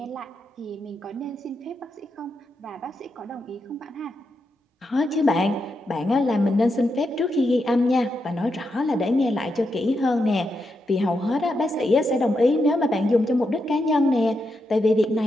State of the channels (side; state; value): both; normal; correlation 0.84